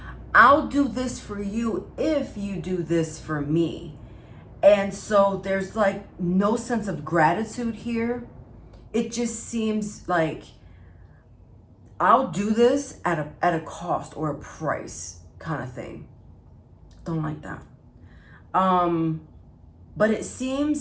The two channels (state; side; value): identical; both; correlation 1.00